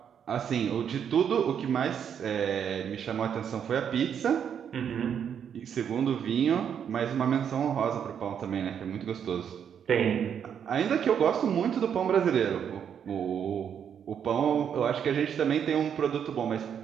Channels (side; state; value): left; quieter; 8.2 dB